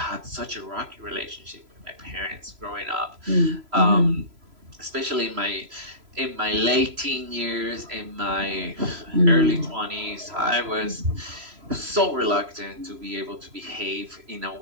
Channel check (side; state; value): left; late; 3.0 ms